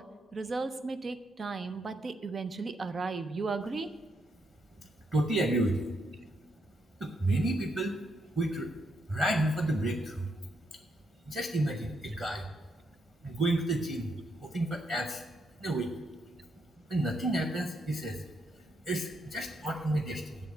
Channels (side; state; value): both; normal; correlation 0.78